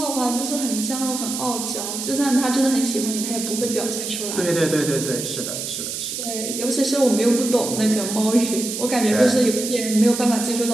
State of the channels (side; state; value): right; noise; hiss, 5 dB below the sound